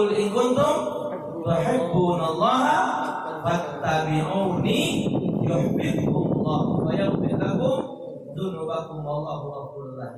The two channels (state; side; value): identical; both; correlation 1.00